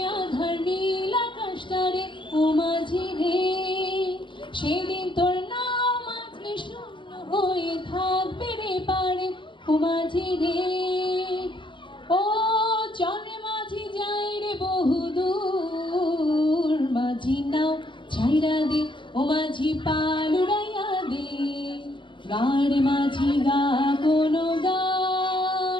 আধার নীল আকাশটারে ও মাঝি রে, সেদিন তোর নাম মাঝে শূন্য হয়ে থাকবে রে পারে ও মাঝি রে। ও চলে মাঝি যাই রে বহুদূর, মাঝি নাও ছাইরা দে ও মাঝি পাল উড়াইয়া দে, গাড়ে মাঝি গা কোনো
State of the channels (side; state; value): right; late; 0.24 ms